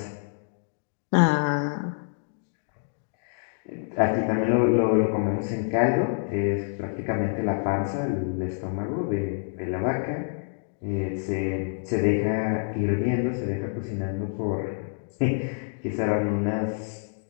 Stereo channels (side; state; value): right; silent; digital silence